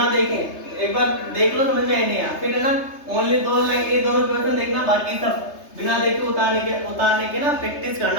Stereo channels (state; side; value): late; right; 3.3 ms